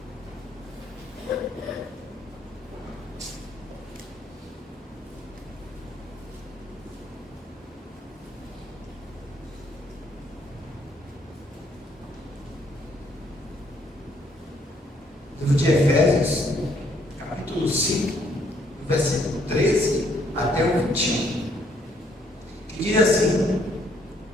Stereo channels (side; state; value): both; normal; correlation 0.68